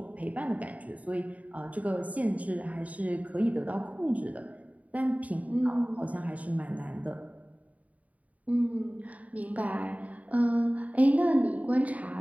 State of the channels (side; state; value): left; late; 0.070 ms